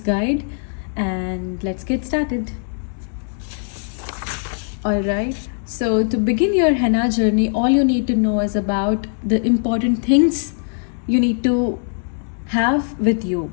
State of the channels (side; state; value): right; silent; digital silence